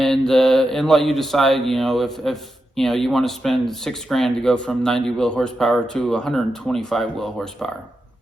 let you decide, if you want to spend $6,000 to go from 90 wheel horsepower to 125 wheel horsepower.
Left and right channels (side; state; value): both; normal; correlation 0.87